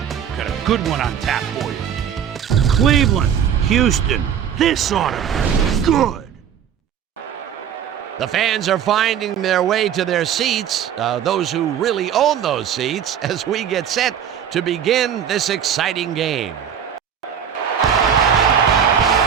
Got a good one on tap for you. Cleveland, Houston, this ought to be good. The fans are finding their way to their seats, those who really own those seats, as we get set to begin this exciting game.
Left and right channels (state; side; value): quieter; left; 8.6 dB